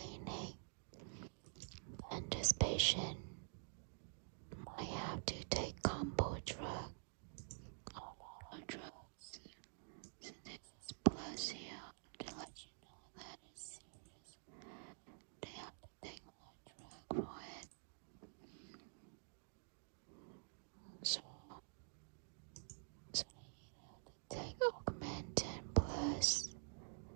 and this patient might have to take combo drug, a lot of drugs. So this is plus here to let you know that it's serious. They have to take more drug for it. So they take Augmentin plus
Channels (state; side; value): silent; left; digital silence